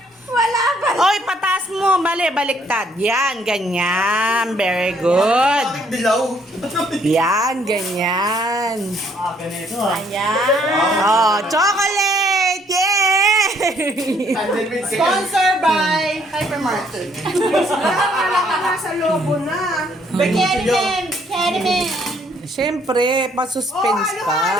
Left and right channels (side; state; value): both; normal; correlation 0.66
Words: Wala pa. Oy, patas mo. Mali, baliktad. Yan, ganyan. Very good. Bakit dilaw? Yan, ganyan. Ganito ah. Ayan. Oh, chocolate! Yay! Sponsor by Hypermarket. Wala ka na sa lobo na. Bikini Man! Bikini Man! Siyempre, pa-suspense